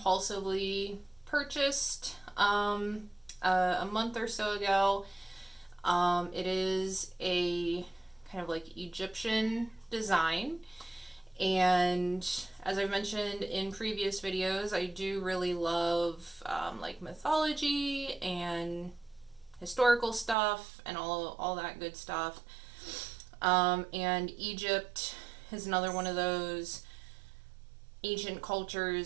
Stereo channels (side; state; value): left; drops out; at 20.4 s